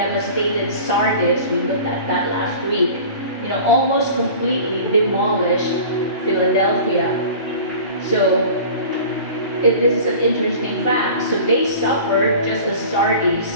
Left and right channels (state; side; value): inverted; both; correlation -0.40